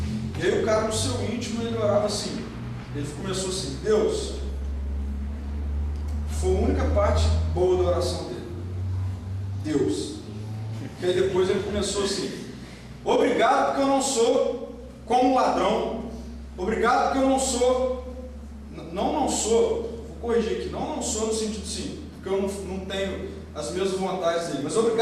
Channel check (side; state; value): both; identical; correlation 1.00